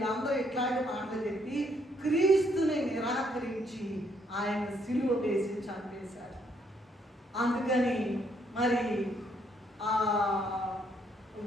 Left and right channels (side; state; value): both; normal; correlation 0.71